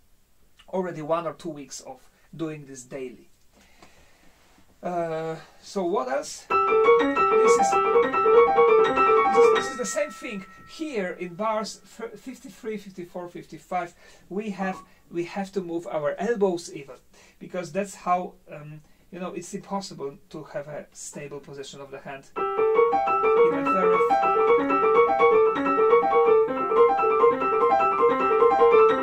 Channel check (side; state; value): both; identical; correlation 1.00